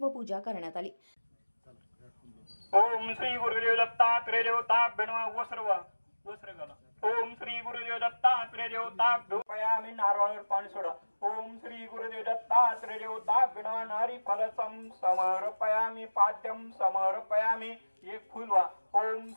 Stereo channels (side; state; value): both; inverted; correlation -1.00